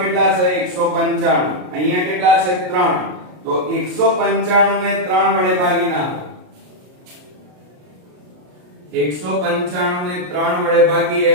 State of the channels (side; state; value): left; late; 33 ms